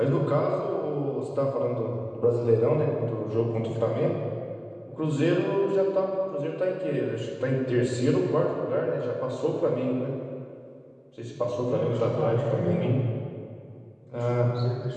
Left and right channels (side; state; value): both; identical; correlation 1.00